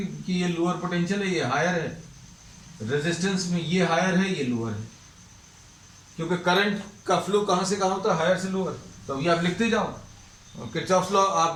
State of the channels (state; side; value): identical; both; correlation 1.00